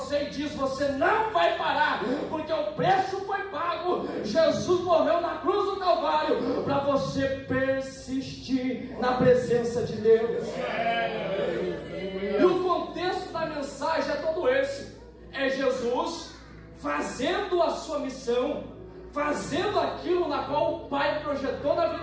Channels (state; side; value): identical; both; correlation 1.00